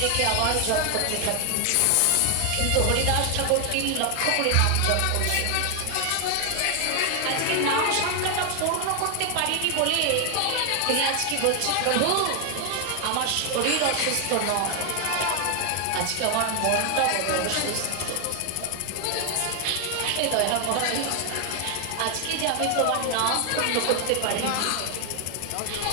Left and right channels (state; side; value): different; both; correlation 0.00